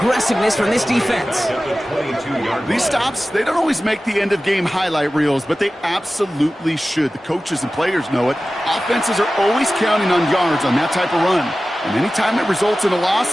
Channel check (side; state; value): both; normal; correlation 0.96